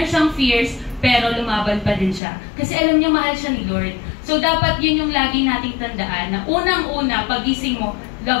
siyang fears, pero lumaban pa din siya. Kasi alam niya mahal siya ni Lord. So dapat yun yung lagi nating tandaan na unang-una, pagising mo,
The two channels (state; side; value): drops out; right; at 2.2 s